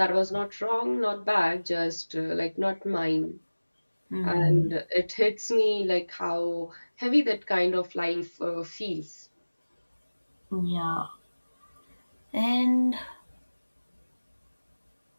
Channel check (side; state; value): both; inverted; correlation -1.00